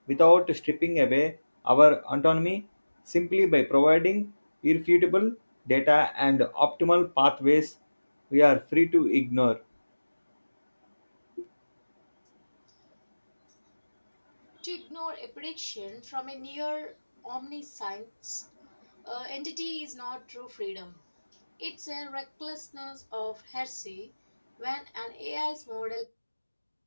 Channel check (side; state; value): both; inverted; correlation -1.00